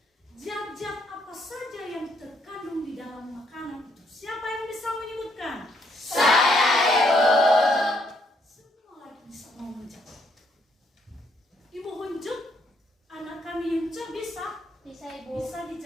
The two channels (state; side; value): normal; both; correlation 0.71